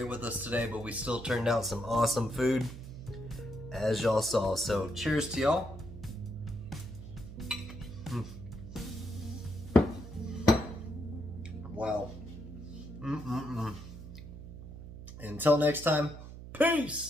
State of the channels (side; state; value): right; noise; hum, 12 dB below the sound